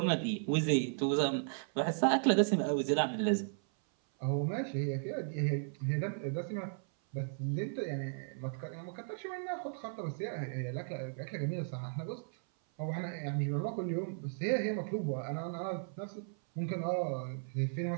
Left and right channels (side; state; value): left; silent; 54 dB below the other